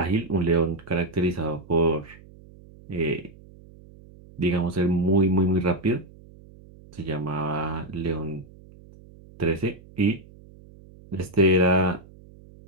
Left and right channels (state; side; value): noise; right; hum, 22 dB below the sound